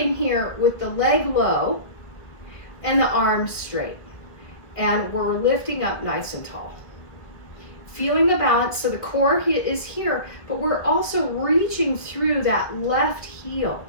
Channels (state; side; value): late; right; 1.6 ms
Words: here with the leg low and the arms straight. And we're lifting up nice and tall. Feeling the balance, so the core is here, but we're also reaching through that left heel